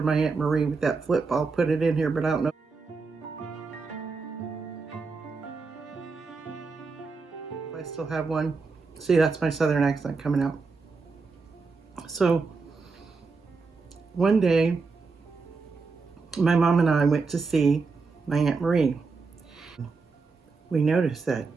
my Aunt Marie with that flip, I'll put it in here, but I don't know. If I still have one. See, that's my southern accent coming out. So one day, my mom and I went to see my Aunt Marie. We noticed that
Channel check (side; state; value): left; quieter; 4.4 dB